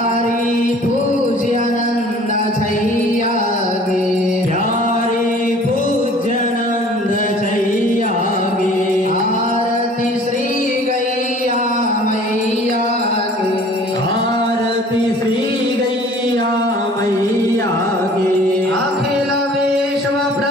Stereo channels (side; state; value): both; normal; correlation 0.50